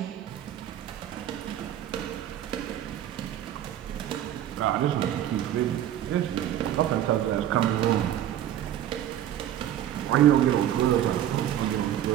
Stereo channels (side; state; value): left; quieter; 11.5 dB